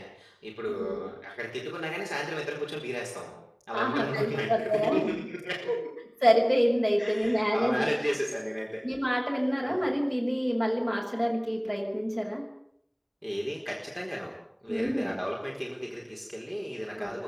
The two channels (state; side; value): identical; both; correlation 1.00